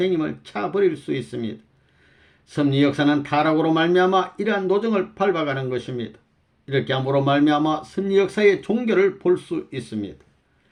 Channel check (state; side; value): identical; both; correlation 1.00